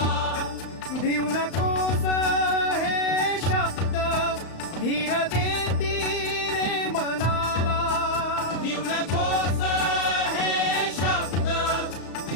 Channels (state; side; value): late; right; 35 ms